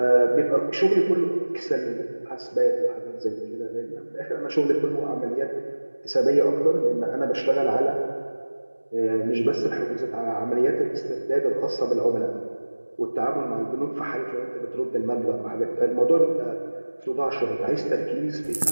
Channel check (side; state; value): both; inverted; correlation -1.00